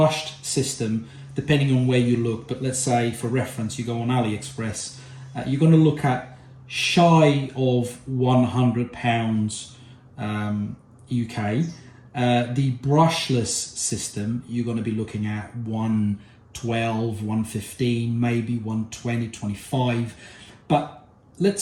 system, depending on where you look, but let's say for reference you go on AliExpress, you're going to look at shy of £100 UK. The brushless system, you're going to be looking at 112, 115, maybe 120, 25. But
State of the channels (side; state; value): both; identical; correlation 1.00